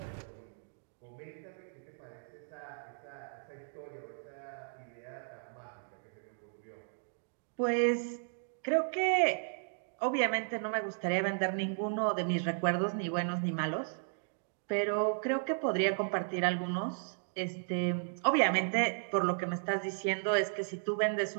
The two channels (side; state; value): left; silent; digital silence